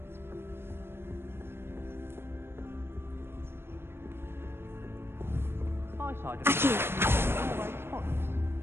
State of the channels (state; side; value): late; left; 0.11 ms